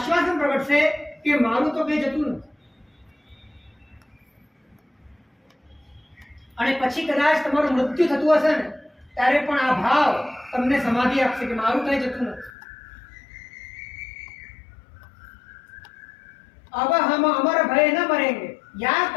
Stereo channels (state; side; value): drops out; right; at 12.5 s